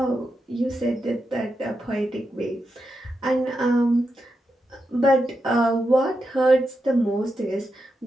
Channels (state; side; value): normal; both; correlation 0.87